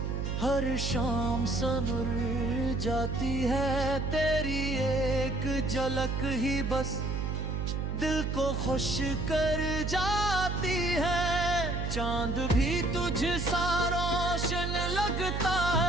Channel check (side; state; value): right; noise; hum, 1 dB below the sound